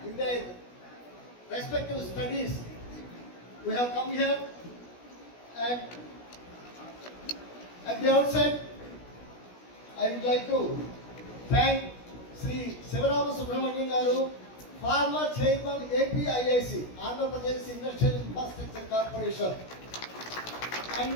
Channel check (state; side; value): late; right; 16 ms